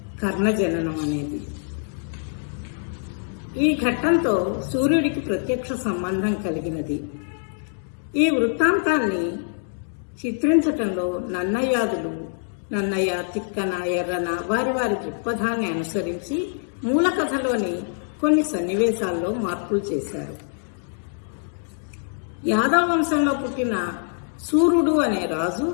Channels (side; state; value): right; silent; digital silence